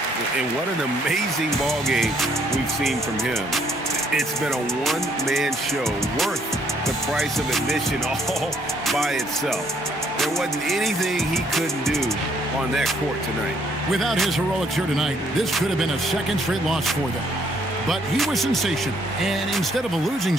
And what an amazing ball game we've seen from him. It's been a one-man show worth the price of admission all by itself. There wasn't anything he couldn't do on that court tonight. Without his heroics here tonight, this could have been a second straight loss for them. But he was sensational, and instead of a losing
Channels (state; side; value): normal; both; correlation 0.68